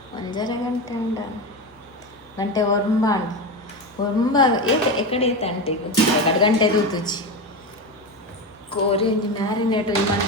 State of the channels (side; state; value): both; normal; correlation 0.19